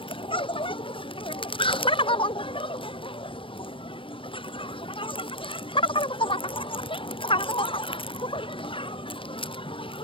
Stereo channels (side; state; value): right; late; 0.25 ms